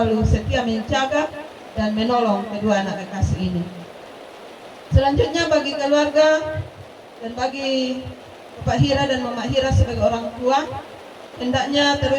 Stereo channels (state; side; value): identical; both; correlation 1.00